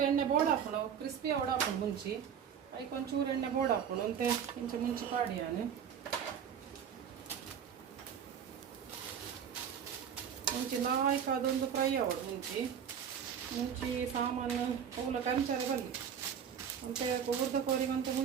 ಎಣ್ಣೆ ಬೋರ್ಡ್ ಹಾಕೋಣ ಕ್ರಿಸ್ಪಿ ಅವಡ ಹಾಕೊಂಡು ಮುಂಚಿ ಐಕ್ ಒಂಚೂರು ಎಣ್ಣೆ ಬೋರ್ಡ್ ಹಾಕೋಣ ಅಂತೆ ಇಂಚೆ ಮುಂಚಿ ಪಾಡಿ ನಾನು ಮುಂಚಿ ನಾಲ್ಕು ಅದೊಂದು ಫ್ರೈ ಅವಡು ಮುಂಚಿ ಸಾಮಾನು ಪೂಲ ಕಂಚಾರೆ ಬಲ್ಲಿ ಅಂತೆ ಊರ್ದ ಕೋರಿಗಂತೆ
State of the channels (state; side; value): quieter; left; 8.1 dB